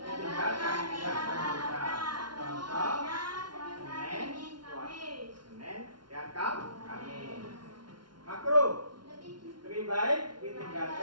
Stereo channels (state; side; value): late; left; 0.71 ms